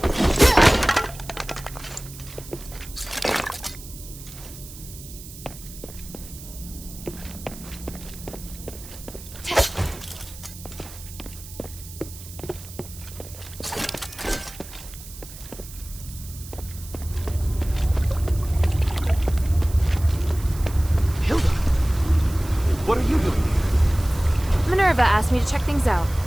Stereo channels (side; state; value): right; noise; hiss, 16 dB below the sound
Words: What are you doing here? Minerva asked me to check things out,